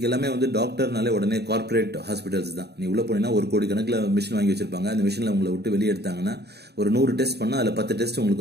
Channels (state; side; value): late; left; 0.48 ms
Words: எல்லாமே டாக்டர்னாலே உடனே கார்பரேட் ஹாஸ்பிட்டல்ஸ் தான். நீ உள்ள போனீங்கன்னா 1 கோடி கணக்கில் மிஷின் வாங்கி வச்சிருப்பாங்க. அந்த மிஷின்ல உங்களை விட்டு வெளியே எடுத்தாங்கன்னா ஒரு 100 டெஸ்ட் பண்ணா அதுல 10 டெஸ்ட்